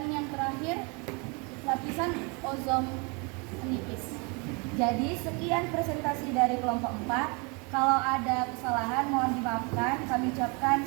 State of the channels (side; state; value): left; quieter; 31.5 dB